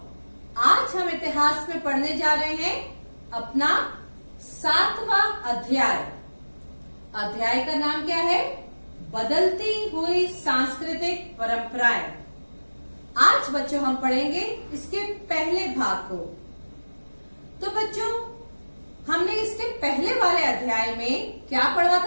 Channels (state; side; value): inverted; both; correlation -1.00